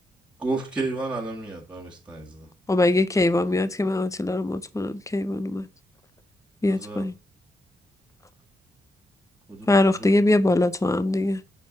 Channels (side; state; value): both; normal; correlation 0.85